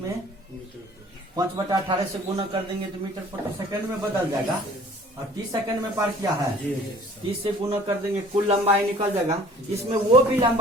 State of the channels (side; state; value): both; normal; correlation 0.51